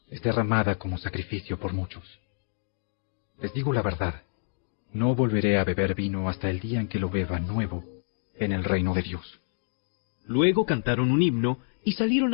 Es derramada como sacrificio por muchos. Les digo la verdad, no volveré a beber vino hasta el día en que lo beba nuevo en el reino de Dios. Luego cantaron un himno y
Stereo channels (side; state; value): right; silent; digital silence